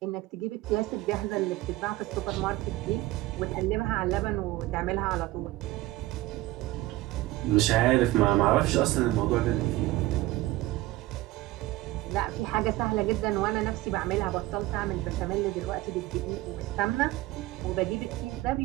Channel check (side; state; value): left; quieter; 17.7 dB